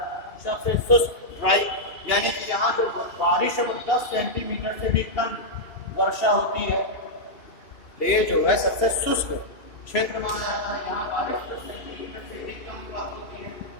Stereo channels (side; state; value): right; late; 2.8 ms